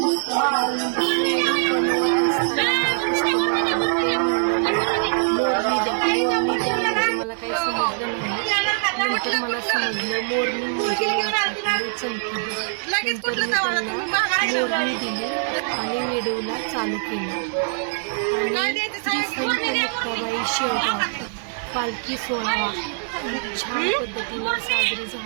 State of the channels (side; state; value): left; silent; 58 dB below the other